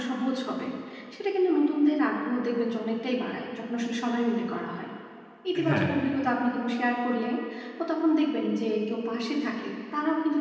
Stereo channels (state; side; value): identical; both; correlation 1.00